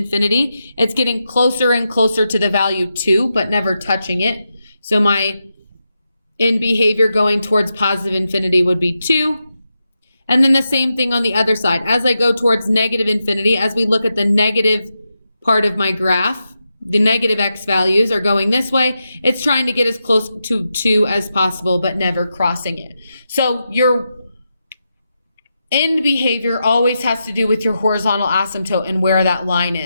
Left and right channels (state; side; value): inverted; both; correlation -0.87